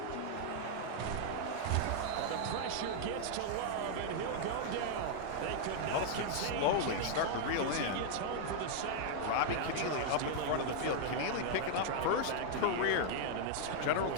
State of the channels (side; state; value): both; different; correlation 0.00